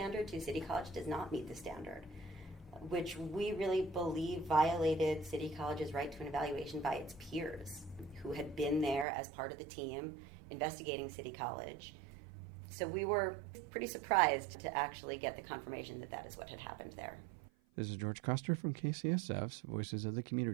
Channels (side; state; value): left; drops out; at 9.1 s